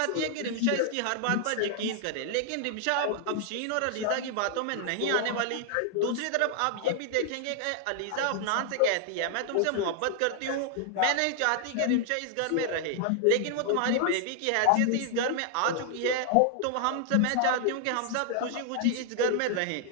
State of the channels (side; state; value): both; different; correlation 0.00